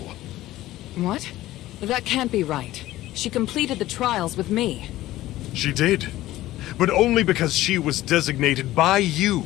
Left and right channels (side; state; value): right; quieter; 15.7 dB